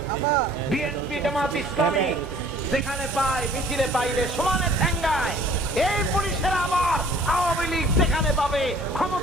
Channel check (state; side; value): normal; both; correlation 0.53